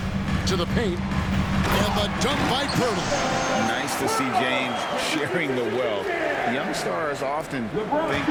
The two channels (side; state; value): both; identical; correlation 1.00